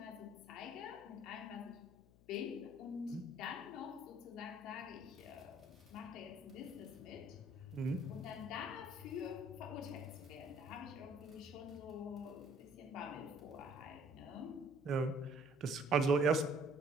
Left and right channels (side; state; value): left; noise; hum, 24 dB below the sound